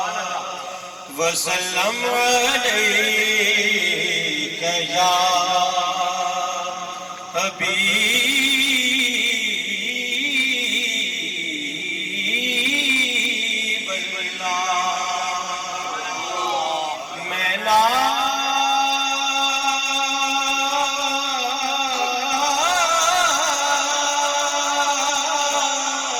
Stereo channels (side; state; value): both; identical; correlation 1.00